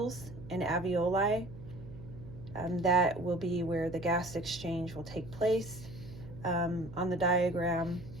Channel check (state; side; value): noise; right; hum, 15 dB below the sound